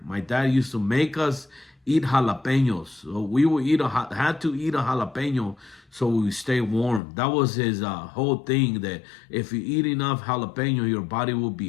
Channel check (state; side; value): drops out; right; at 7.0 s